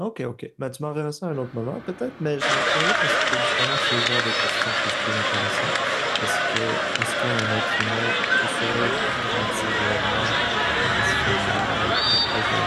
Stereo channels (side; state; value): both; identical; correlation 1.00